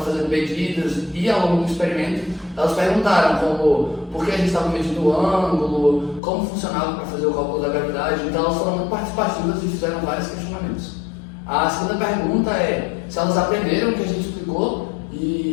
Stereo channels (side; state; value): right; drops out; at 6.2 s